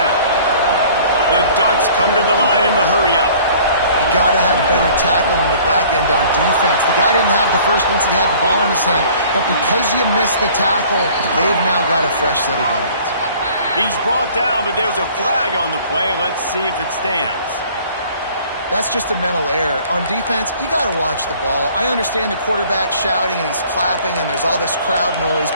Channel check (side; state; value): both; inverted; correlation -0.52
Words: The Ducks come to the line in the hurry-up. You got to have better tackling in the back end on defense. The guy didn't have the first once he had the ball in his hand, but because you missed the tackle, they've now got a fresh set of downs. He's brought down, but there's a flag on the play. Let's see if it stands. That's just a mental error. On defense, you got to watch the ball. I understand the quarterback shouting and he's clapping and there's all this crowd noise,